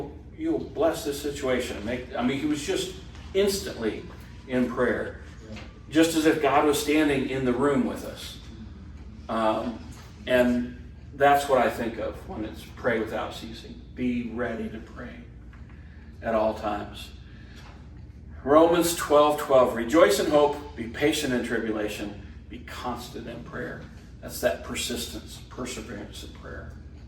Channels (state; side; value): identical; both; correlation 1.00